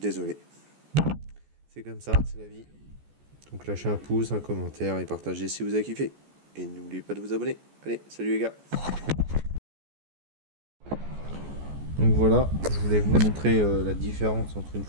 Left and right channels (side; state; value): left; late; 14 ms